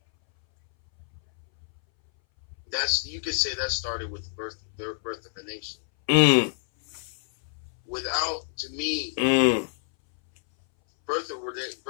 You could say that started with the birth of a nation. To me, birth of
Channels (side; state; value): right; silent; 60 dB below the other